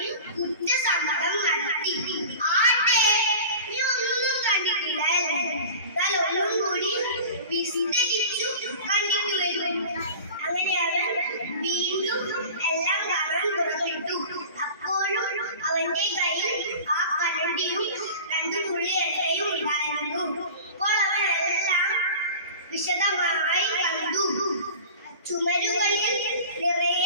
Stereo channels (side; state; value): both; inverted; correlation -0.37